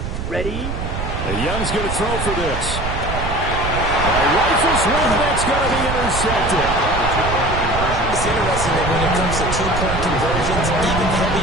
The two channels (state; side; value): noise; right; rumble, 5 dB below the sound